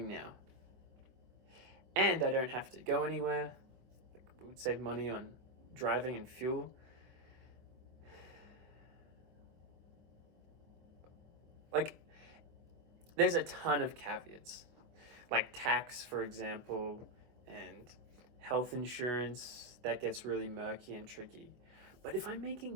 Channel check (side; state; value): left; late; 24 ms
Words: now. And I don't have to go anywhere. Like, it would save money on driving and fuel. Like, there's a ton of caveats. Like tax, for example, and health insurance, that gets really murky and tricky. But if I'm